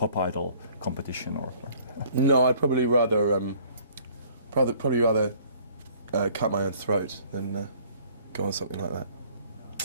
idol competition, or? No, I'd probably rather cut my own throat than go on something like that.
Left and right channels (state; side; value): inverted; both; correlation -0.56